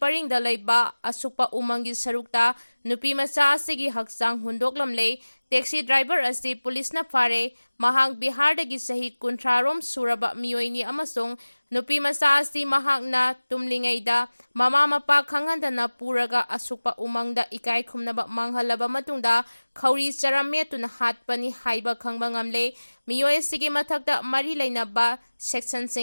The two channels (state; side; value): inverted; both; correlation -1.00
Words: leiba asukpa umangi sarukta nupi macha asigi haksang hundoklamle taxi driver asi police na fare mahang Bihar dagi sahi kuntrarom suraba miyoini amasung nupi macha asi mahakna tumlingaida mama mapa khangandana puraga asukpa umangda ikai khumnaba manghalaba matungda khauri charametuna hatpani haiba khangba ngamle miyoi sigi mathakta mari leinaba section